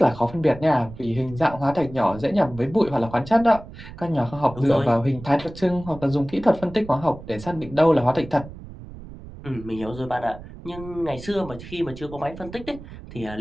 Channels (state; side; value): noise; right; rumble, 15 dB below the sound